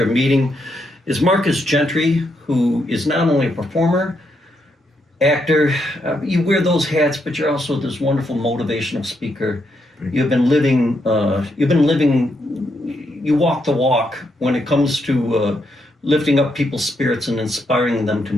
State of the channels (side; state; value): both; normal; correlation 0.79